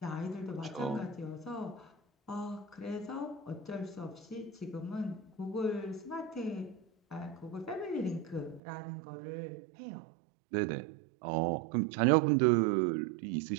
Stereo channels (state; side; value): drops out; left; at 8.6 s